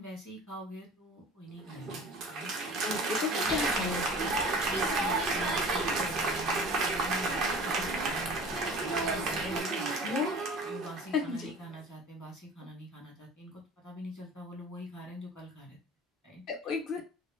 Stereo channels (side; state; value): both; normal; correlation 0.42